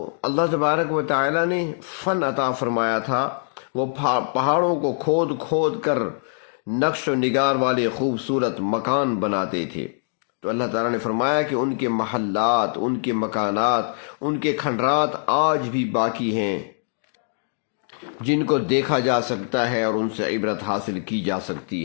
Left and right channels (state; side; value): silent; right; digital silence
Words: اللہ تبارک و تعالی نے فن عطا فرمایا تھا، وہ پہاڑوں کو کھود کھود کر نقش و نگار والے خوبصورت مکان بناتے تھے۔ تو اللہ تعالیٰ نے فرمایا کہ ان کے محلات، ان کے مکانات، ان کے کھنڈرات آج بھی باقی ہیں، جن کو دیکھا جا سکتا ہے اور ان سے عبرت حاصل کی جا